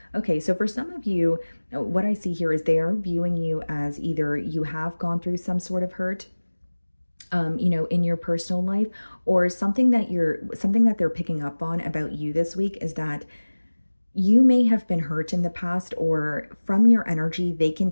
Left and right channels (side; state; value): both; inverted; correlation -1.00